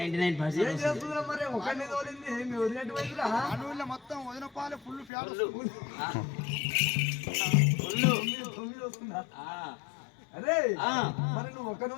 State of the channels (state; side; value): drops out; right; at 5.1 s